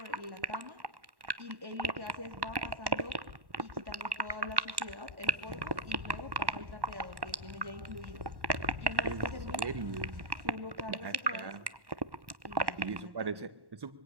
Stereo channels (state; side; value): late; left; 1.1 ms